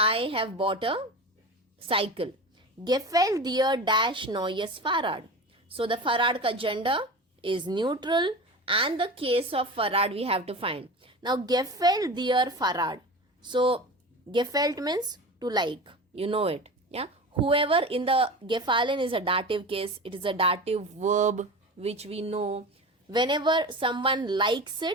have bought a cycle. Gefällt dir dash neues Fahrrad. So the Fahrrad ka gender is neutral and the case of Fahrrad we have to find. Now gefällt dir Fahrrad. So gefällt means to like. You know it. Yeah. Whoever in the gefallen is a dative case. It is a dative verb which we know. Whenever someone likes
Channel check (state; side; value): normal; both; correlation 0.31